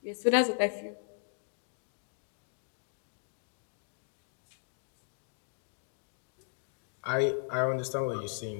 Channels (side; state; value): right; silent; digital silence